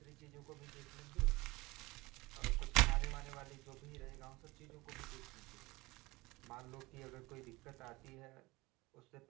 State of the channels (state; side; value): quieter; left; 21.8 dB